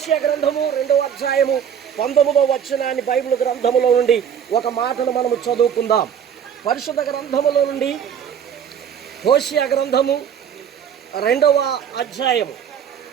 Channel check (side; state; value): left; quieter; 8.3 dB